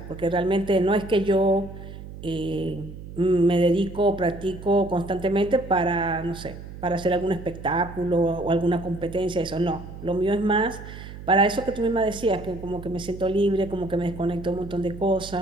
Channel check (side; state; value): right; noise; hum, 13 dB below the sound